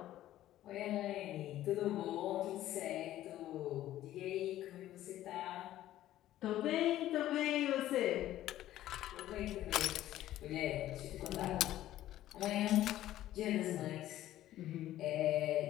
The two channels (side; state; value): right; quieter; 13.7 dB